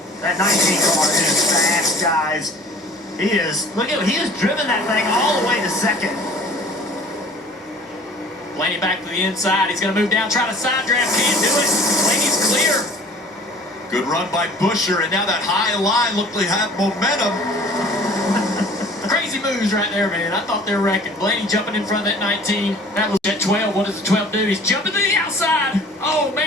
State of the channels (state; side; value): normal; both; correlation 0.49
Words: That 19 car is fast, guys. He is. Look at, he has driven that thing all the way to 2nd. Blaney back to the inside. He's going to move down, try to side draft. Can't do it. Blaney's clear. Good run by Busher, and now that high line looked like have momentum. Crazy moves right there, man. I thought they were wrecking. Blaney jumping in front of that 19. That was at 12. What does the 12 do? He's jumping to the outside. Oh,